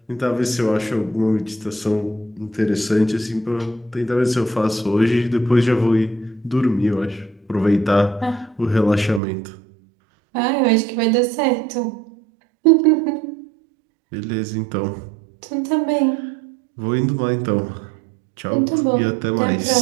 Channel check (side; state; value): left; drops out; at 9.2 s